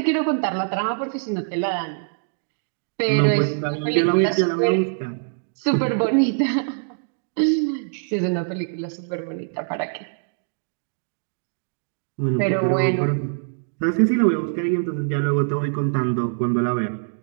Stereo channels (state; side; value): silent; left; digital silence